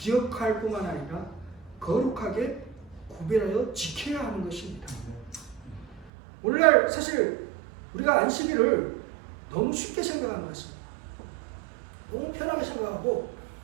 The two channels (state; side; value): drops out; left; at 6.1 s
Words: 뿐만 아니라 거룩하게 구별하여 지켜야 하는 것입니다. 오늘날 사실 우리가 안식일을 너무 쉽게 생각하는 것 같습니다. 너무 편하게 생각하고